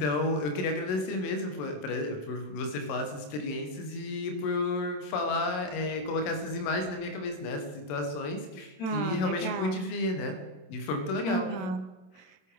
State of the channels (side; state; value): right; late; 27 ms